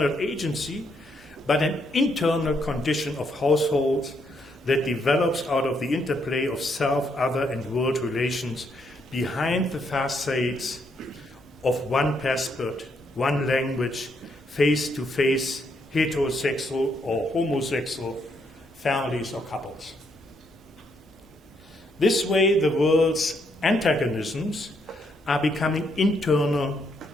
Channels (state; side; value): normal; both; correlation 0.75